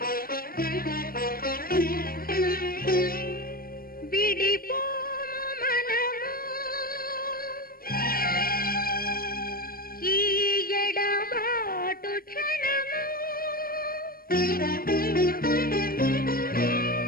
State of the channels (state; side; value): late; right; 0.42 ms